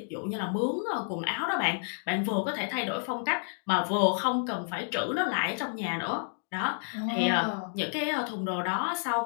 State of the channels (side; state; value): right; silent; digital silence